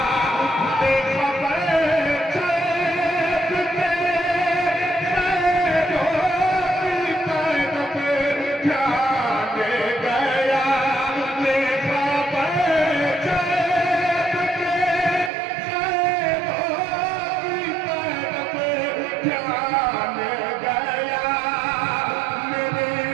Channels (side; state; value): left; drops out; at 15.3 s